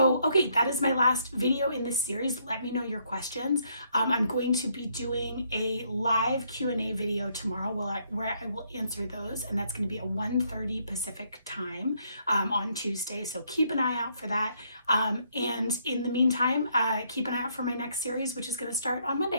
Okay, that is my last video in this series. Let me know your questions. I'm going to be doing a live Q&A video tomorrow where I will answer those, and that's going to be at 1:30 Pacific time on Tuesday. So keep an eye out for that. And in the meantime, keep an eye out for my next series, which is going to start on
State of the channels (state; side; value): inverted; both; correlation -0.71